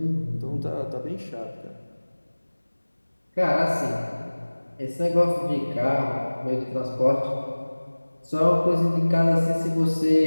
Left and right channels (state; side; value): inverted; both; correlation -1.00